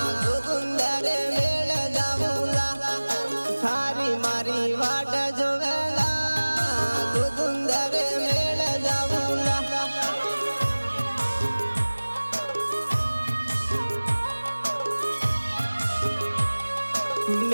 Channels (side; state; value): both; inverted; correlation -1.00